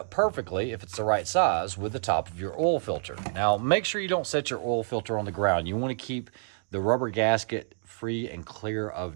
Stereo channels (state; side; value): silent; left; digital silence